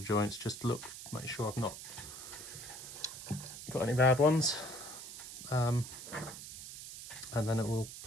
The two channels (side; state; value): right; noise; hiss, 11 dB below the sound